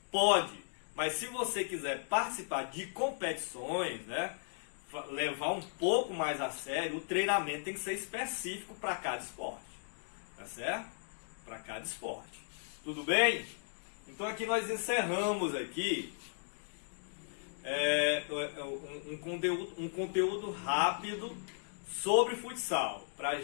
Pode, mas se você quiser participar de competições, né, levar um pouco mais a sério, o treinamento tem que ser específico para cada esporte, tá certo? Para cada esporte. Tudo bem? Então aqui nós encerramos aqui um conteúdo rápido sobre futsal, para a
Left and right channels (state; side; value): silent; right; digital silence